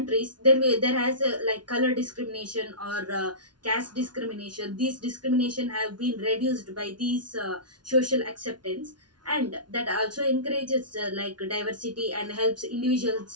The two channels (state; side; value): late; left; 0.70 ms